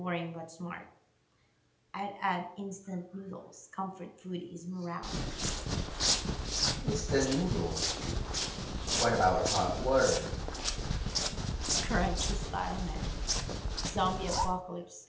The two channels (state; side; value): identical; both; correlation 1.00